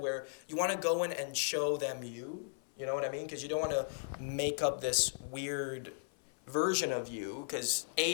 you want to go in and show them you know what I mean? Because you don't want to make up this weird version of you, because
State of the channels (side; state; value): right; silent; 54 dB below the other